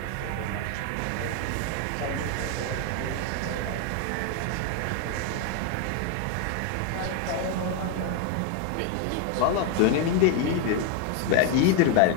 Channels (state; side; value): different; both; correlation 0.01